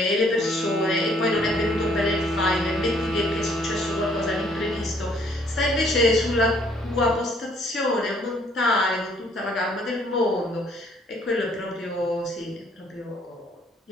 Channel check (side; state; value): both; normal; correlation 0.64